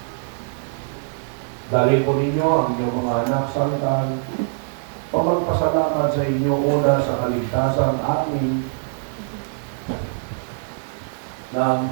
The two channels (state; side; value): silent; left; digital silence